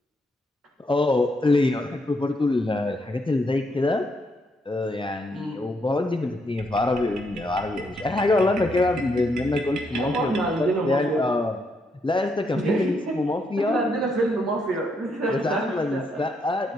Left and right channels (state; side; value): normal; both; correlation 0.76